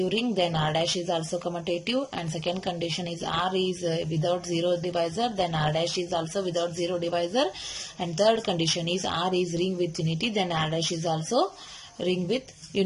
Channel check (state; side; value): identical; both; correlation 1.00